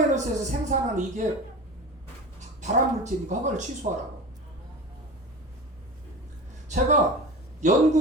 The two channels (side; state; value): both; normal; correlation 0.31